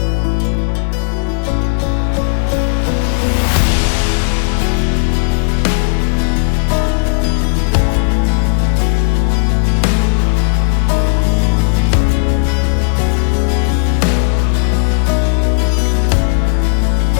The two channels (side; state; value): right; silent; digital silence